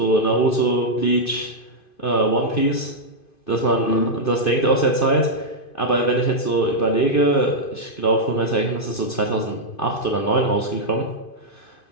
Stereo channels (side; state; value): right; late; 2.5 ms